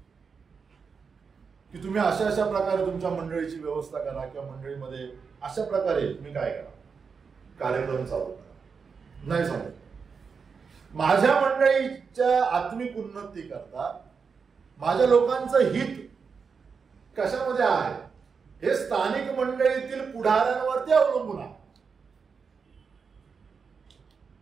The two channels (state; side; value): quieter; left; 5.6 dB